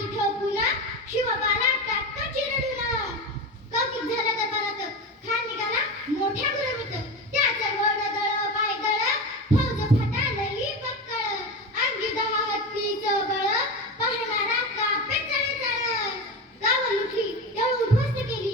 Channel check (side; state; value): both; normal; correlation 0.23